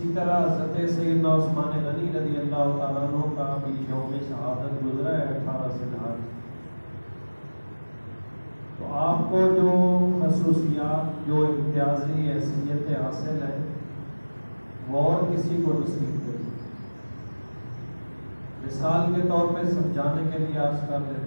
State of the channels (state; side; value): inverted; both; correlation -1.00